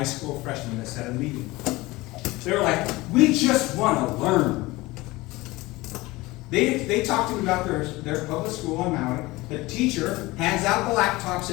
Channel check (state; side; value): quieter; right; 20.7 dB